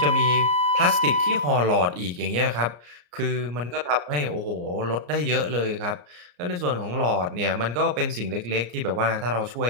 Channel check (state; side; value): late; left; 34 ms